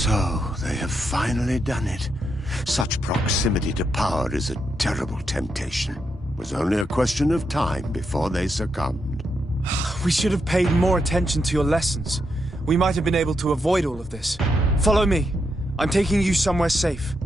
they have finally done it. Such proximity to power is a terrible temptation. It was only a question of time before they succumbed. We should have paid more attention to your lessons. We might have been able to avoid all of this. Follow me. I'm taking you somewhere safe.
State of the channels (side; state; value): both; normal; correlation 0.82